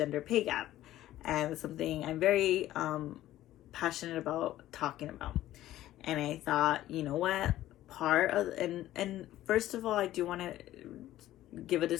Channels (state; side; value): quieter; right; 14.2 dB